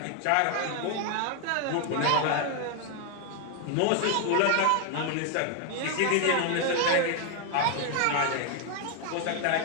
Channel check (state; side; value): different; both; correlation 0.00